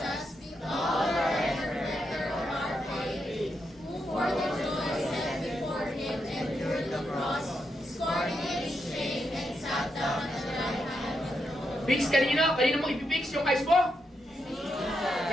Fix kanino? Kanino mo ipipix yung eyes mo?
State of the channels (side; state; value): both; normal; correlation 0.83